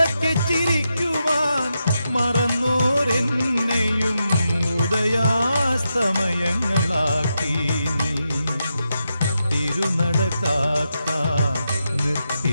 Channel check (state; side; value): inverted; both; correlation -0.86